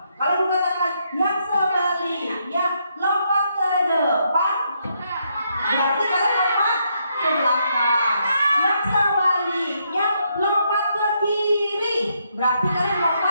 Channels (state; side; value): inverted; both; correlation -0.77